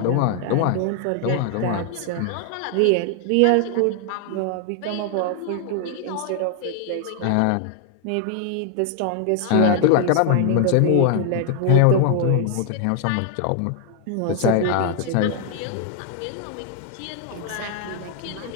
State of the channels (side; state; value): both; different; correlation 0.00